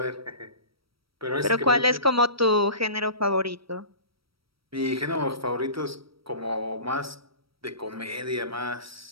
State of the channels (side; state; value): left; late; 0.75 ms